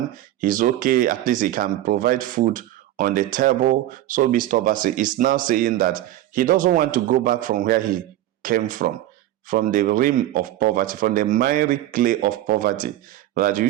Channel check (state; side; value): quieter; left; 14.3 dB